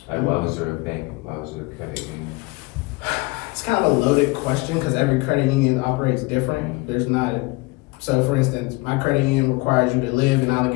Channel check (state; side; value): quieter; right; 24.6 dB